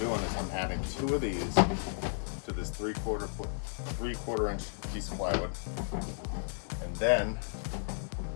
is I'm adding 2 of these to this 3/4 inch piece of plywood, and then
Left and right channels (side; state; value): right; silent; digital silence